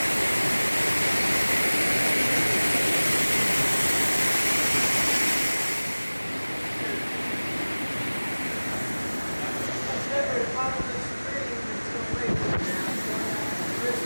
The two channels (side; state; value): both; inverted; correlation -1.00